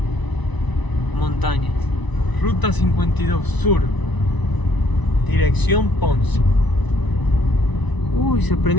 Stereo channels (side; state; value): right; late; 1.0 ms